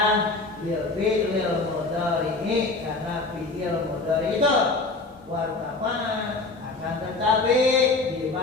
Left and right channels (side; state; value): right; quieter; 3.4 dB